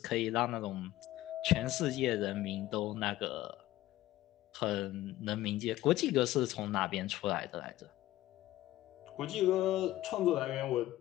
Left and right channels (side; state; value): right; quieter; 15.6 dB